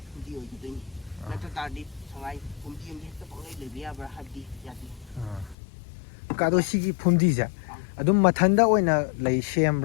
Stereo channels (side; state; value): right; drops out; at 5.6 s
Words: ꯐꯨꯝꯗꯤ ꯑꯣꯏꯒꯗꯣꯏꯅꯤ ꯅꯠꯇ ꯇꯥꯔꯗꯤ ꯁꯉꯥꯏ ꯐꯨꯝꯗꯤ ꯑꯃꯗꯤ ꯍꯦꯛꯇ ꯄꯪꯂꯩ ꯂꯩꯕ ꯌꯥꯕ꯭ꯔꯥ ꯍꯥꯏꯕꯗꯤ ꯌꯥꯗꯦ ꯑꯗꯣ ꯁꯤꯒꯤ ꯐꯨꯝꯗꯤꯁꯦ ꯑꯗꯨꯝ ꯃꯊꯟꯗ ꯑꯣꯏꯅ ꯂꯩ